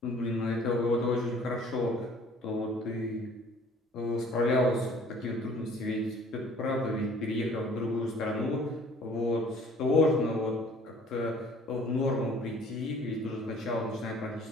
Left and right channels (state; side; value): normal; both; correlation 0.53